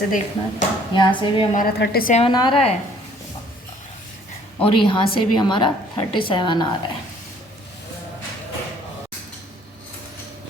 देखना, यहाँ से भी हमारा 37 आ रहा है और यहाँ से भी हमारा 37 आ रहा है।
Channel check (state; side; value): normal; both; correlation 0.58